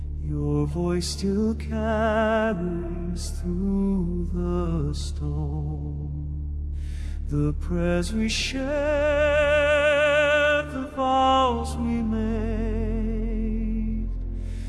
your voice still carries through the stone the prayers we shared, the vows we made,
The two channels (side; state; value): both; identical; correlation 1.00